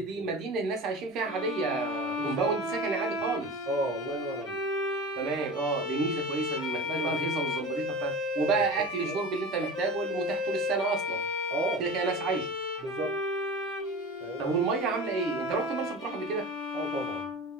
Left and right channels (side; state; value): both; normal; correlation 0.33